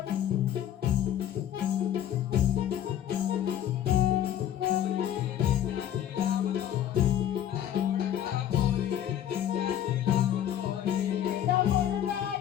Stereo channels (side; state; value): right; quieter; 10.8 dB